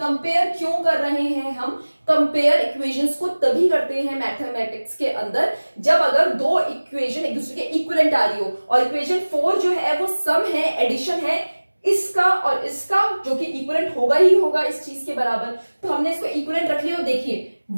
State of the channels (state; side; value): inverted; both; correlation -1.00